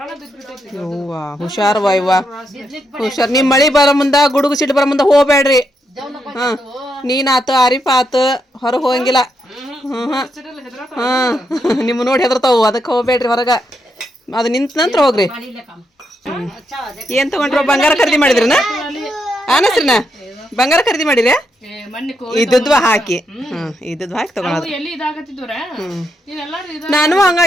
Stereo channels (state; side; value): normal; both; correlation 0.81